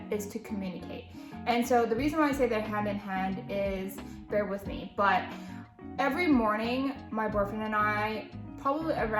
is to communicate. And so the reason why I say they're hand in hand is, bear with me, but every morning my boyfriend and I, probably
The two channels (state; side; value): identical; both; correlation 1.00